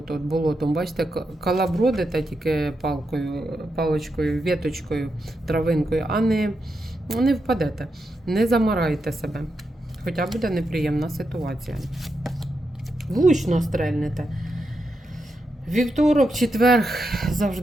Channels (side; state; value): both; normal; correlation 0.85